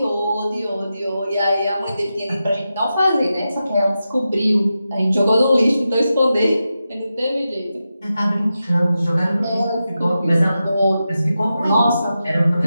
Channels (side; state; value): both; inverted; correlation -0.90